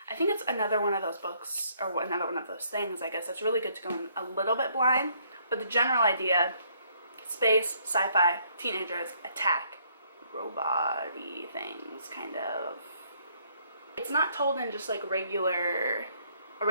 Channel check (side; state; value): both; inverted; correlation -0.67